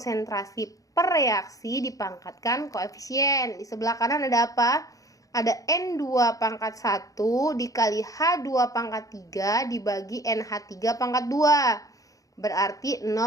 per reaksi dipangkatkan koefisien. Di sebelah kanan ada apa? Ada N2 pangkat 1 dikali H2 pangkat 3 dibagi NH3 pangkat 2. Berarti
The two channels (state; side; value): late; right; 0.17 ms